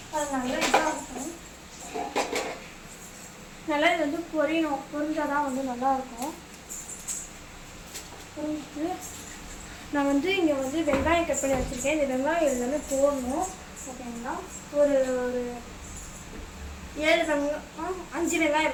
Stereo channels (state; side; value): identical; both; correlation 1.00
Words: அது நல்லா இதாக இருக்கும். நல்லா இது பொரியணும். பொரிஞ்சால் தான் நல்லாயிருக்கும். பொரிஞ்சிட்டு நான் இங்கே வெங்காயம் கட் பண்ணி வச்சுருக்கேன். இந்த வெங்காயம் எல்லாமே போடணும். ஓகேங்களா? ஒரு 7 வெங்காயம் 5 வெங்காயம்